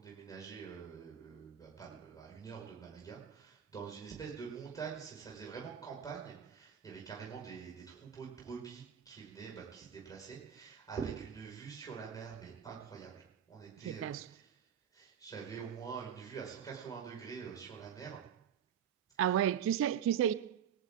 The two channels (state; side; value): quieter; left; 9.0 dB